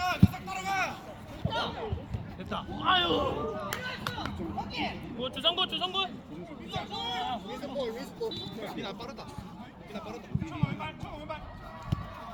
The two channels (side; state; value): both; identical; correlation 1.00